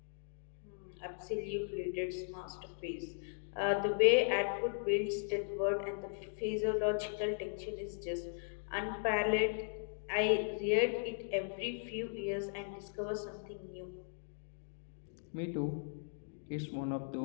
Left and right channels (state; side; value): silent; right; digital silence